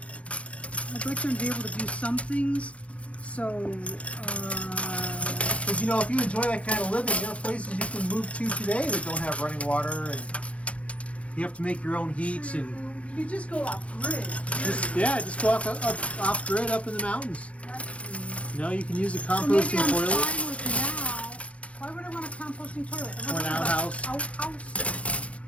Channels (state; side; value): late; right; 0.063 ms